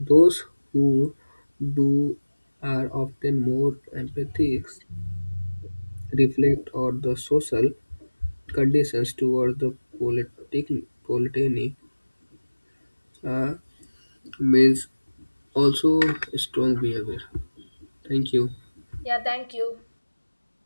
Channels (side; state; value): both; inverted; correlation -1.00